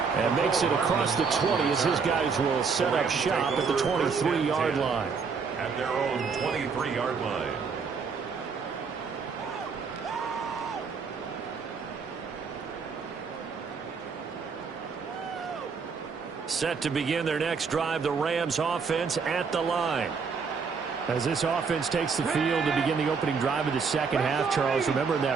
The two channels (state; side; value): quieter; left; 5.4 dB